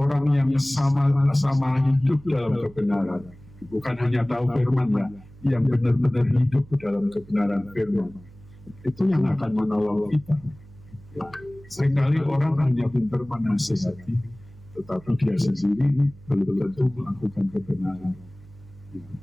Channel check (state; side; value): noise; right; hum, 22 dB below the sound